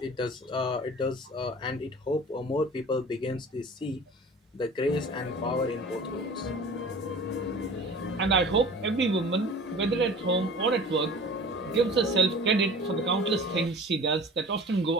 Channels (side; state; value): both; normal; correlation 0.41